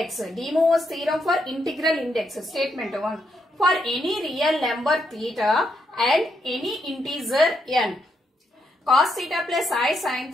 De Moivre's theorem for integral index. Statement 1. For any real number theta and any integer n, cos theta plus I sin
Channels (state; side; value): normal; both; correlation 0.78